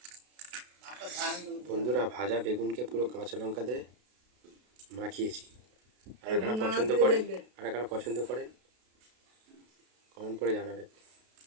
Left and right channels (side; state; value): left; late; 32 ms